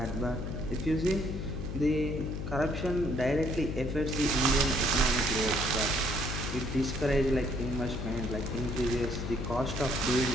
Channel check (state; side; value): noise; left; hum, 5 dB below the sound